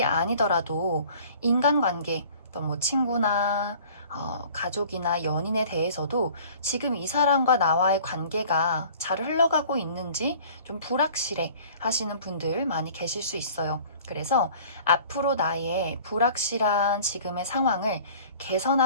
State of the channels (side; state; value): both; inverted; correlation -0.48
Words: 아니더라도 인간관계, 또 뭐 친구나 가족이나 연인에 대해서도 지금 이 사람과 나와의 관계가 잘 흘러가고 있는지 좀 불확실해 하시는 분들 많이 계실 수 있어요. 그래서 앞으로 나의 불확실한 지금의 상황을